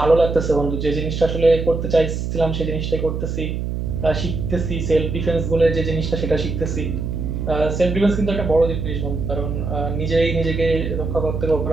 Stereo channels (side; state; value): right; noise; hum, 3 dB below the sound